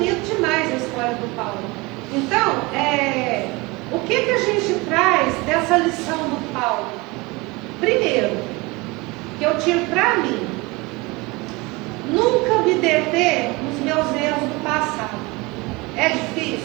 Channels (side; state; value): left; quieter; 24.3 dB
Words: demais a história do Paulo. Então, o que a gente traz dessa lição do Paulo? Primeiro, que eu tiro para mim, nunca me deter nos meus erros do passado. É